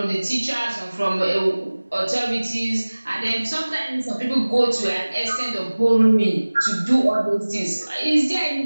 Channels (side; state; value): both; inverted; correlation -1.00